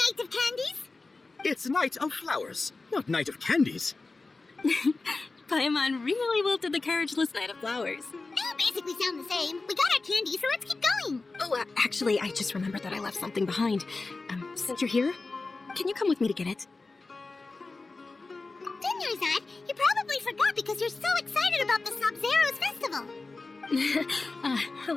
of Candies. It's Night of Flowers, not Night of Candies. Paimon really wilted the carriageless Knight of Flowers. They all basically sound the same. We got our candy, so let's keep going. Oh, actually, I just remembered that I left something behind. Since you're here, can you come with me to get it? Dinnerside, you probably forgot because you're so excited about the Sub-Zero's festival. How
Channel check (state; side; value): quieter; right; 3.6 dB